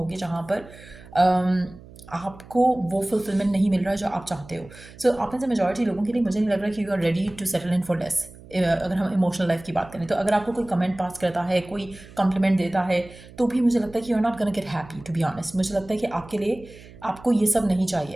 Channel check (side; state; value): right; noise; hum, 20 dB below the sound